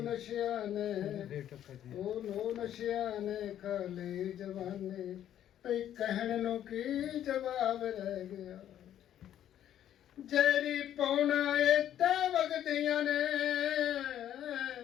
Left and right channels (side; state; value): right; quieter; 11.0 dB